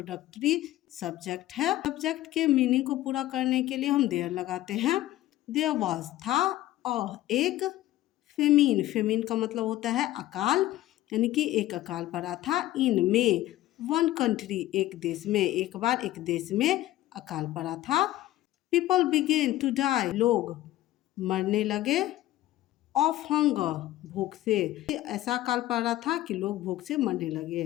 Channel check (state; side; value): quieter; right; 15.2 dB